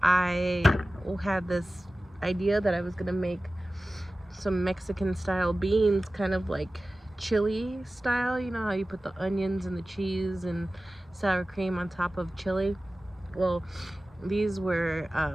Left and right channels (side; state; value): both; normal; correlation 0.96